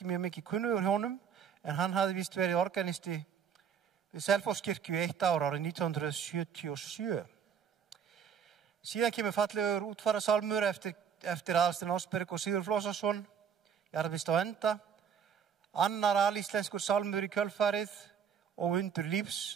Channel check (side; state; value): left; quieter; 7.5 dB